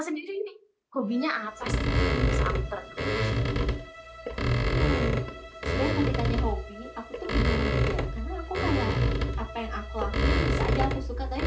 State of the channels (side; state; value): both; identical; correlation 1.00